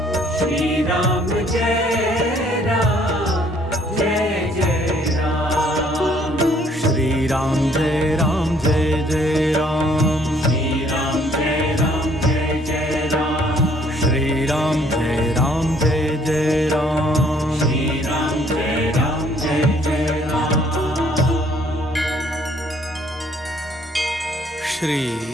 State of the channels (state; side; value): normal; both; correlation 0.62